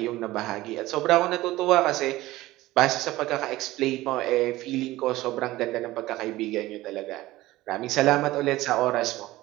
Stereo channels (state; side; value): quieter; left; 17.5 dB